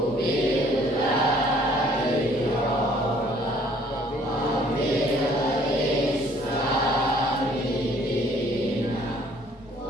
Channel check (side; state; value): both; normal; correlation 0.59